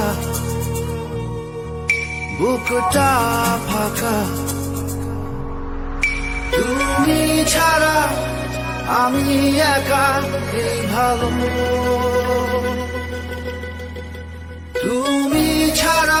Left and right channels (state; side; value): identical; both; correlation 1.00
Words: বুকটা ফাঁকা। তুমি ছাড়া আমি একা, এই ভালো। তুমি